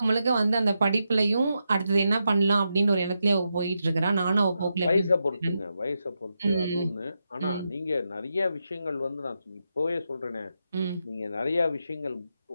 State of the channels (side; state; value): both; inverted; correlation -0.86